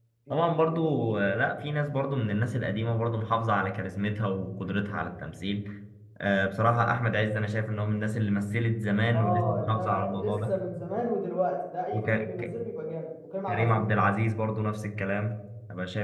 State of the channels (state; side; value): identical; both; correlation 1.00